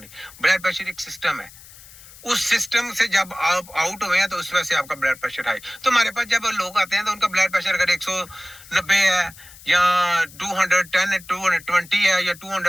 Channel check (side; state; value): left; noise; hiss, 20 dB below the sound